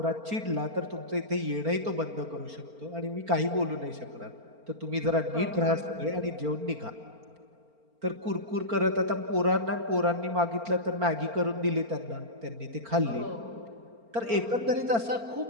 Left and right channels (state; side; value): late; left; 4.4 ms